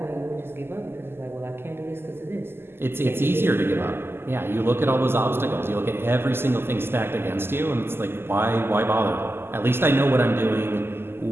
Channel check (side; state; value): left; late; 0.11 ms